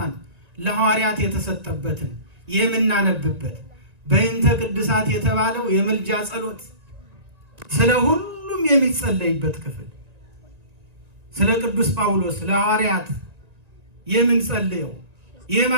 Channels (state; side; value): late; left; 1.9 ms